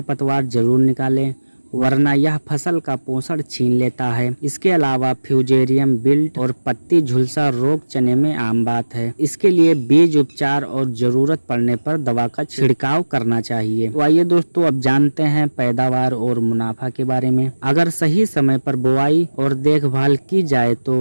जरूर निकालें, वरना यह फसल का पोषण छीन लेता है। इसके अलावा फ्यूजेरियम विल्ट और पत्ती झुलसा रोग चने में आम बात है। इसके लिए बीज उपचार और जरूरत पड़ने पर दवा का छिड़काव करना चाहिए। तो आइए दोस्तों, अब जानते हैं पैदावार और मुनाफा के बारे में। अगर सही समय पर बुआई और देखभाल की जाए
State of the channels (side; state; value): both; inverted; correlation -1.00